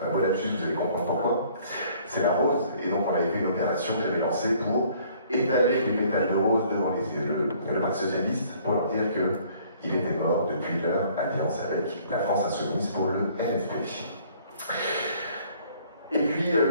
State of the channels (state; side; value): inverted; both; correlation -0.58